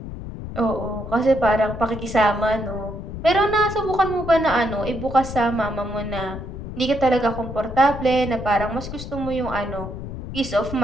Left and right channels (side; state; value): left; noise; rumble, 9 dB below the sound